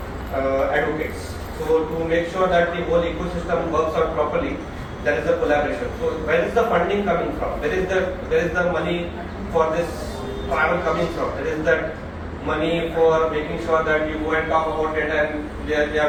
advocates. So to make sure that the whole ecosystem works out properly, there is a collaboration. So where is the funding coming from? Where is the money for this travel coming from? There is that money for making sure that you go and talk about it, and they are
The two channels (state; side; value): identical; both; correlation 1.00